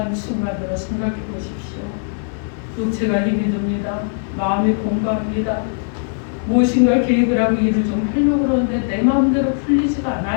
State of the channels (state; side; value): silent; right; 66 dB below the other